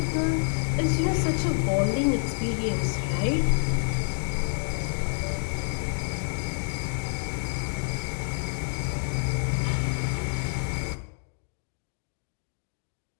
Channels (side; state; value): right; silent; digital silence